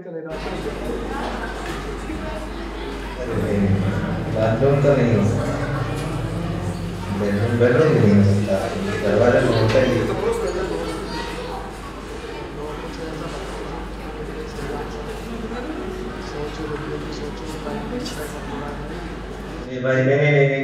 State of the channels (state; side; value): identical; both; correlation 1.00